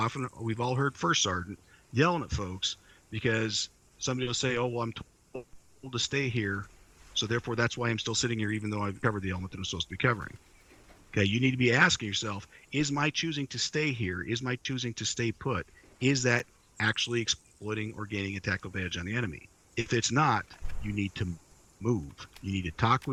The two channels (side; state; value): both; identical; correlation 1.00